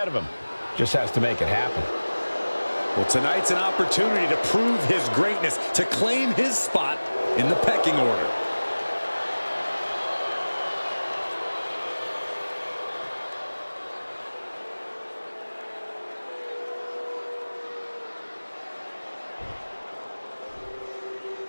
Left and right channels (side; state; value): both; inverted; correlation -1.00